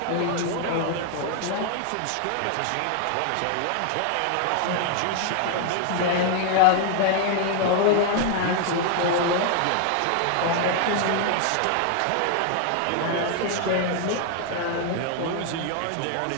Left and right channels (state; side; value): different; both; correlation 0.00